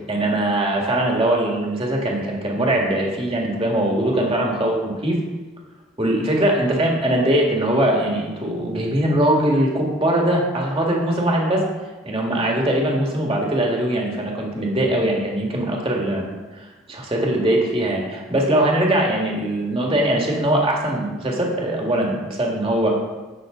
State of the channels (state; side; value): normal; both; correlation 0.49